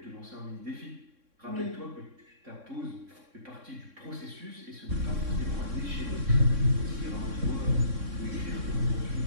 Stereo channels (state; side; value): late; left; 3.6 ms